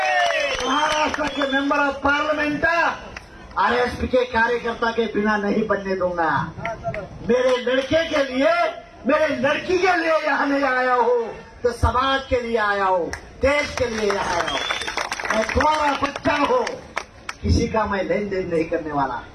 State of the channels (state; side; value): identical; both; correlation 1.00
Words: महाराष्ट्र के मेंबर ऑफ पार्लियामेंट RSP के कार्यकर्ता के बिना नहीं बनने दूंगा। मेरे लड़के के लिए, मेरे लड़की के लिए यहाँ नहीं आया हूँ, तो समाज के लिए आया हूँ, देश के लिए यहाँ आया हूँ। मैं तुम्हारा बच्चा हूँ, किसी का मैं लेन देन नहीं करने वाला।